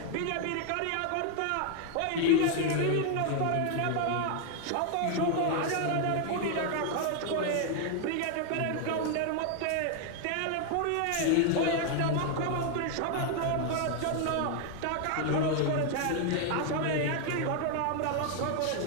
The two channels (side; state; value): both; different; correlation 0.00